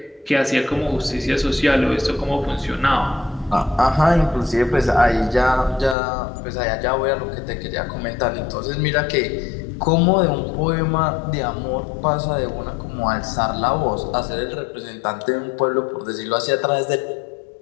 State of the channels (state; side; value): drops out; right; at 6.0 s